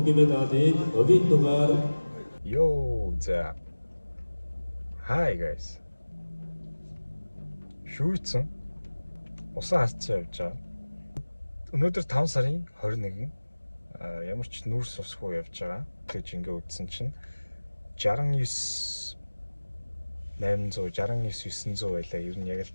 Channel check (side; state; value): both; inverted; correlation -1.00